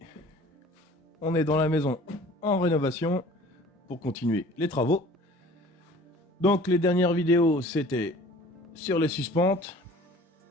on est dans la maison en rénovation pour continuer les travaux. Donc les dernières vidéos, c'était sur les suspentes.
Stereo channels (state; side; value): normal; both; correlation 0.47